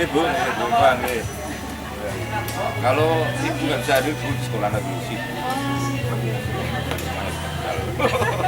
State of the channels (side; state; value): both; identical; correlation 1.00